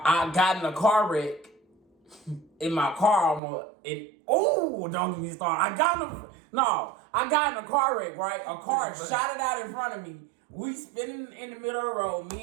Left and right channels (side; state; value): left; drops out; at 3.4 s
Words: got in a car wreck in my car don't get me started. I got in a car wreck, right? A car shot it out in front of me. We spinning in the middle of the road.